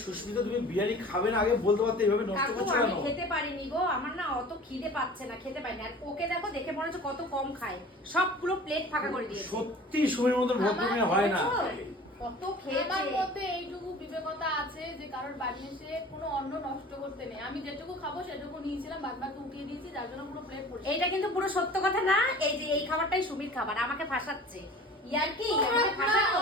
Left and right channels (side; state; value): both; normal; correlation 0.43